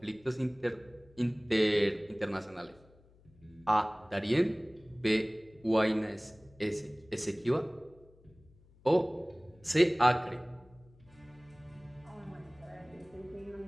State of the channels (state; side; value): noise; left; hum, 28 dB below the sound